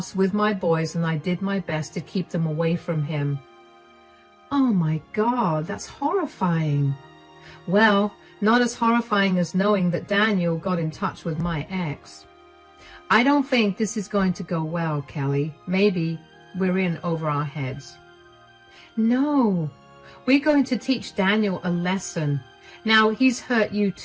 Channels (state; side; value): identical; both; correlation 1.00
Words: with my boys, and I did my best to keep them away from him. Oh my God, that's horrifying. Well, not as horrifying as knowing that Daniel got in touch with my ex. I don't think this is going to go well, Kelly. Maybe we're in over our heads. No, we're going to teach Daniel a lesson. Now, he's hurt you